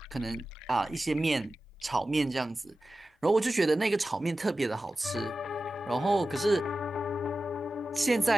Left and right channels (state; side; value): normal; both; correlation 0.94